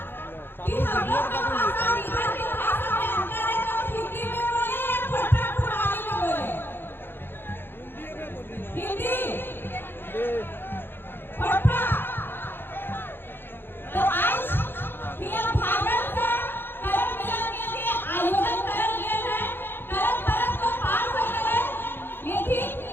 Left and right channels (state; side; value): late; right; 0.099 ms